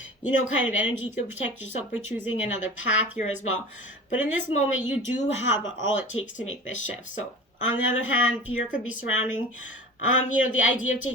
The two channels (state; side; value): normal; both; correlation 0.36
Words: kind of energy. You can protect yourself by choosing another path here as well. But in this moment, you do have all it takes to make this shift. So, on the other hand, fear could be surrounding the idea of